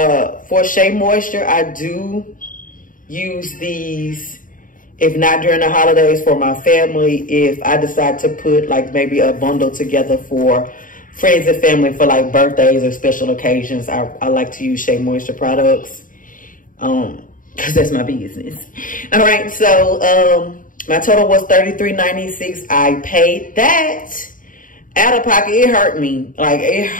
for Shea Moisture, I do use these, if not during the holidays, for my family. If I decide to put like maybe a bundle together for friends and family for like birthdays or special occasions, I like to use Shea Moisture products. Because that's my business. All right, so my total was $33.96. I paid that out of pocket. It hurt me. Like, it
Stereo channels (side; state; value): right; late; 0.39 ms